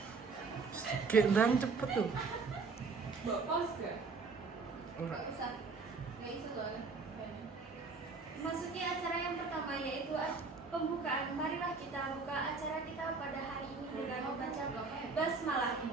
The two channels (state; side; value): quieter; left; 4.4 dB